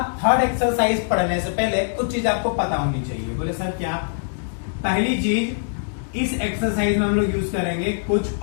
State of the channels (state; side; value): silent; right; digital silence